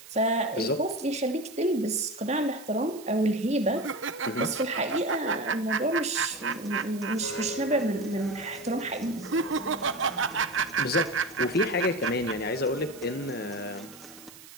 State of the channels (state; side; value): noise; right; hiss, 18 dB below the sound